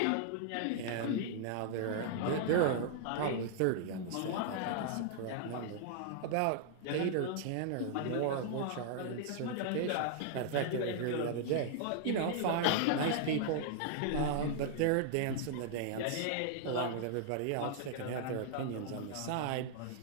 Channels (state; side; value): different; both; correlation -0.01